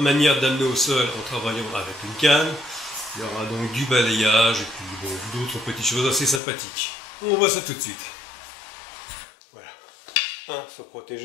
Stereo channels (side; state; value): right; drops out; at 6.4 s